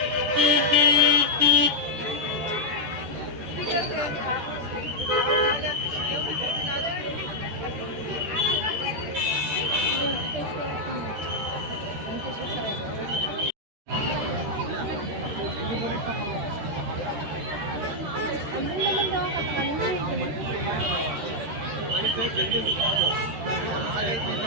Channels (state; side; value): late; left; 14 ms